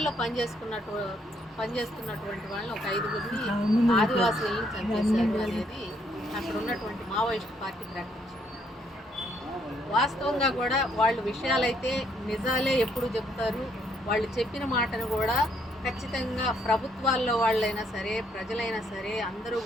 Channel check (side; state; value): both; normal; correlation 0.71